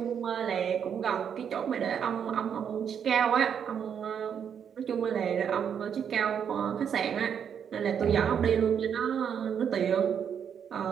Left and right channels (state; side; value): quieter; left; 7.9 dB